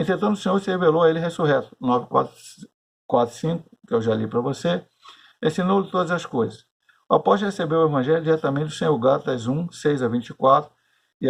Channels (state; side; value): identical; both; correlation 1.00